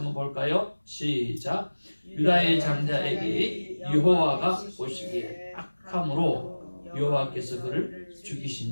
볼까요? 시작. 유다의 장자에게 여호와가 보시기에 악함으로 여호와께서 그를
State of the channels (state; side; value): inverted; both; correlation -1.00